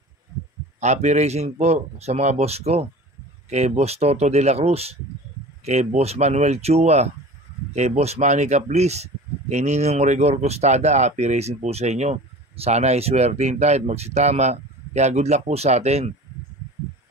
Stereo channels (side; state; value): both; normal; correlation 0.38